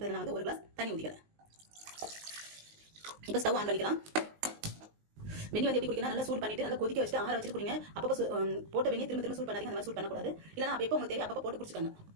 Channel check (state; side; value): late; left; 19 ms